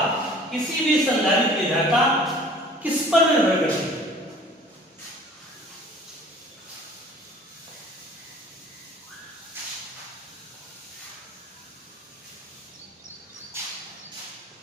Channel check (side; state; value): both; normal; correlation 0.49